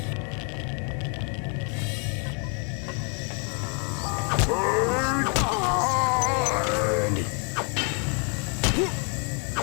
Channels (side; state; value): right; quieter; 36.6 dB